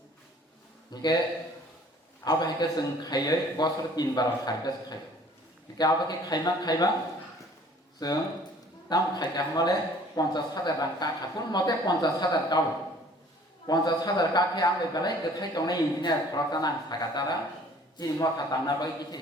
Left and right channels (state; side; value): normal; both; correlation 0.53